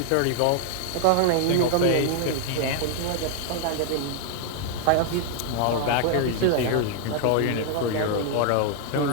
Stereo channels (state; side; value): different; both; correlation 0.00